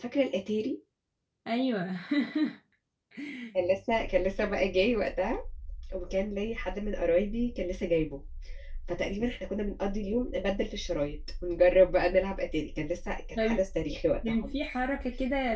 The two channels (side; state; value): both; identical; correlation 1.00